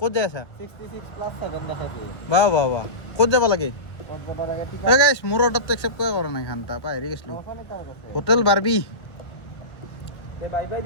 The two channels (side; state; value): right; late; 1.2 ms